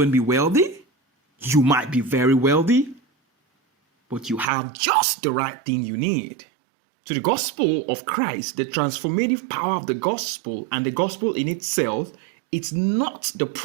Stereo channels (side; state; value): left; drops out; at 4.5 s